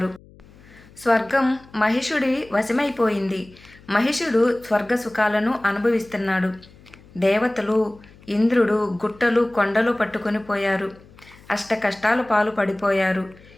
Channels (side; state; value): left; noise; hum, 24 dB below the sound